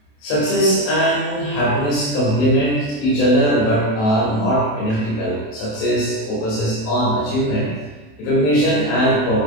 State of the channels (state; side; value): late; right; 27 ms